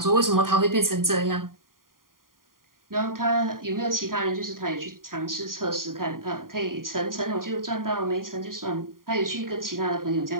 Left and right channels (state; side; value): late; left; 0.91 ms